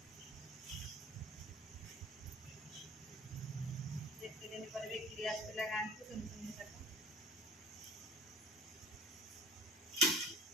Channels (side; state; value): both; normal; correlation 0.45